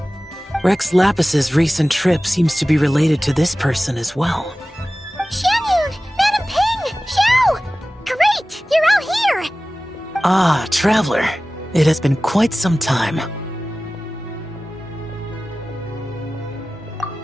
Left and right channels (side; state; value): both; normal; correlation 0.97